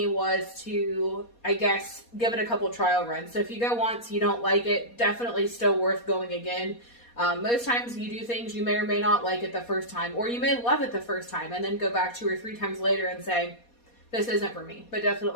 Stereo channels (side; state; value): right; late; 4.2 ms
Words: was to, I guess, give it a couple trial runs. So if you go once, you don't like it, definitely still worth going again. Most times you do things you may or may not like it the first time, or you may love it the first time and then go back 2 or 3 times later and say, this isn't for me. But